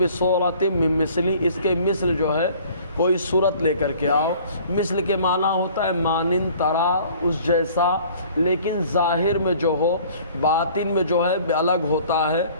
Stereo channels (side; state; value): both; inverted; correlation -0.52